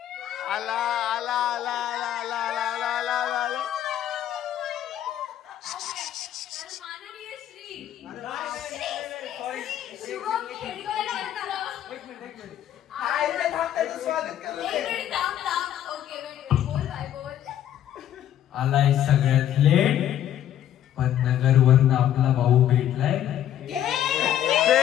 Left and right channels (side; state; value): right; quieter; 11.2 dB